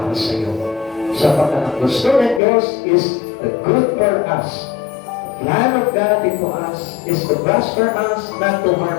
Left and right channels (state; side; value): drops out; right; at 2.4 s